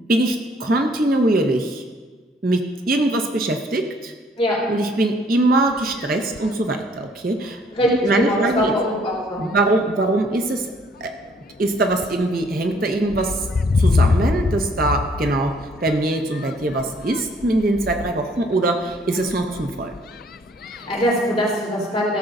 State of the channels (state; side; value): normal; both; correlation 0.62